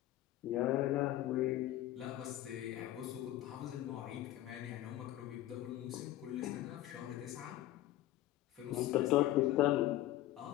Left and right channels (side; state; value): right; quieter; 14.6 dB